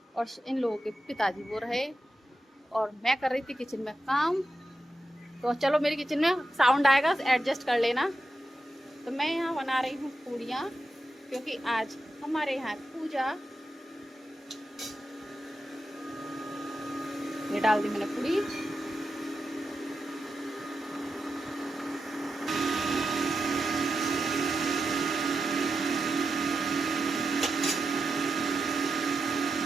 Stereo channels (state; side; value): normal; both; correlation 0.89